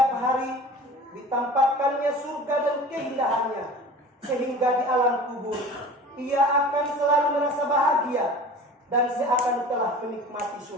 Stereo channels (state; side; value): normal; both; correlation 0.40